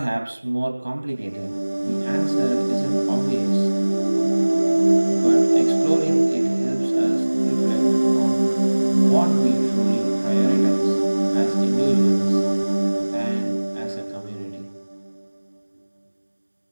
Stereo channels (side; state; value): both; inverted; correlation -1.00